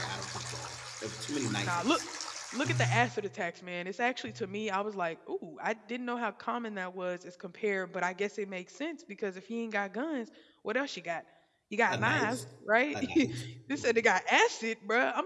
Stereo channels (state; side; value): identical; both; correlation 1.00